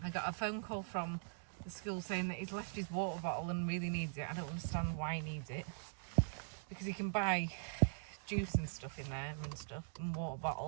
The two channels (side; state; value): left; silent; digital silence